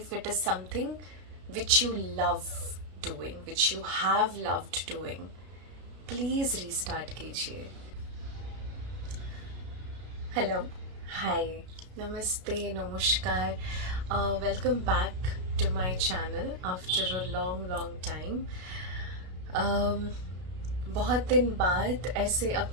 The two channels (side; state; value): left; late; 33 ms